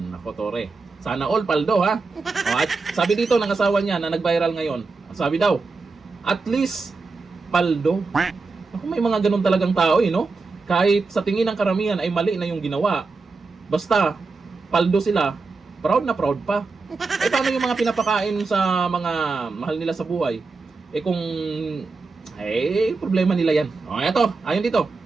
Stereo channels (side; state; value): left; quieter; 4.1 dB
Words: Nako, Tore. Sana all paldo, ha? O, at sabi dito ng asawa niya na nag-viral ngayon. Sabi daw, at least paldo. Ako, may mga ganun talagang tao, no? Kahit sa tingin ng karamihan ay mali na yung ginawa. Basta, paldo sila, proud na proud pa. Eh paano yung mga pinapakain sa mga mahal nila sa buhay? Eh kung, problema nila yan. O eto, ayon dito.